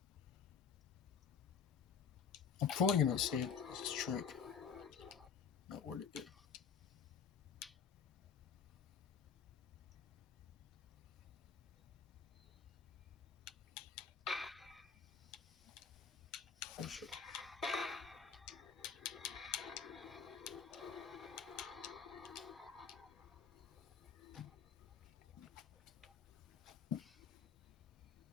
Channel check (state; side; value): quieter; right; 6.7 dB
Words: I'm probably gonna say this trick. Not where to get. For sure.